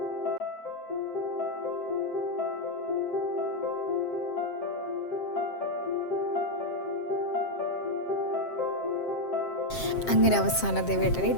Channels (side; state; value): right; late; 7.6 ms